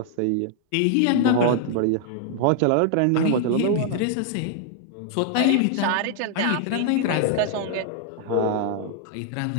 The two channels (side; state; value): both; different; correlation 0.00